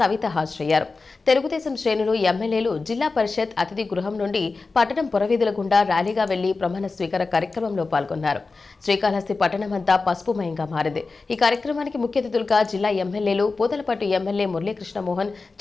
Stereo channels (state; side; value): quieter; right; 4.0 dB